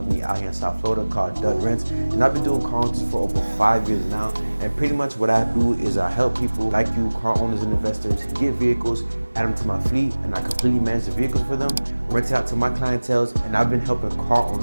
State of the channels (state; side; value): inverted; both; correlation -1.00